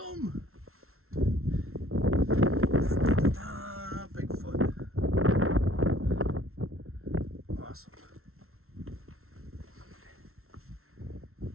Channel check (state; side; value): late; left; 0.62 ms